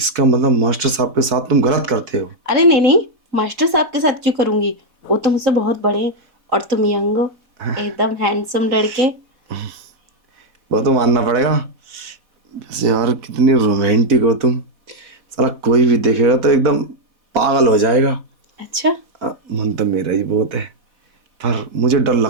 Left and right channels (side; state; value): left; late; 4.1 ms